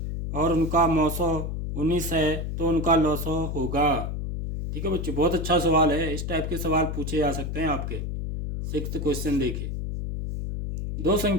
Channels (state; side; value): noise; left; hum, 4 dB below the sound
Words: और उनका मौसो 19 है तो उनका लौसो होगा। ठीक है बच्चों, बहुत अच्छा सवाल है, इस टाइप के सवाल पूछे जा सकते हैं आपके। 6th क्वेश्चन देखिए, दो